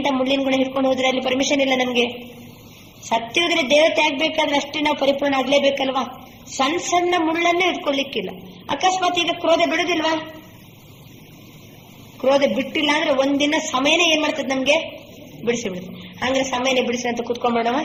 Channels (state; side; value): identical; both; correlation 1.00